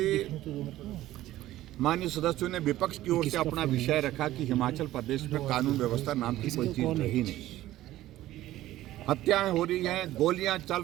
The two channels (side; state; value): left; quieter; 14.9 dB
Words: माननीय सदस्यों ने विपक्ष की ओर से अपना विषय रखा कि हिमाचल प्रदेश में कानून व्यवस्था नाम की कोई चीज रही नहीं, हत्याएं हो रही हैं, गोलियां चल